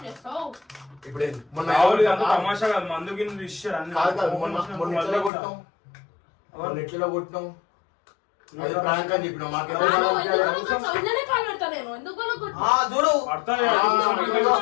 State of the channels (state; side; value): drops out; right; at 5.3 s